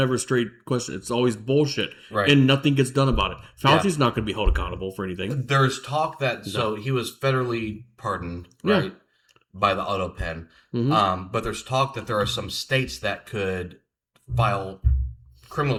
a straight question. It's always bullshit, Right. and nothing gets done about it. Fauci's not going to be held accountable for anything. There's talk that so he was federally pardoned, right, by the auto pen. Mm-hmm. But there's talk that there are some states that could file criminal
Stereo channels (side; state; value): both; identical; correlation 1.00